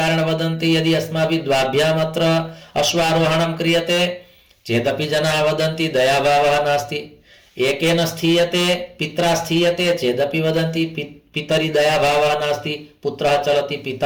वदन्ति, यदि अस्माभिः द्वाभ्याम् अत्र अश्वारोहणं क्रियते चेदपि जनाः वदन्ति दयाभावः नास्ति, एकेन स्थीयते पित्रा स्थीयते चेदपि वदन्ति पितरि दयाभावः नास्ति, पुत्रः चलति,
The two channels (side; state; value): both; identical; correlation 1.00